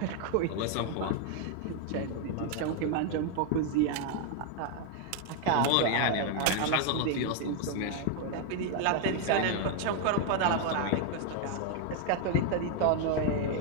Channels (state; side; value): different; both; correlation 0.01